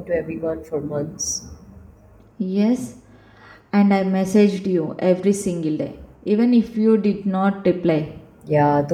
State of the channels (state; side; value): identical; both; correlation 1.00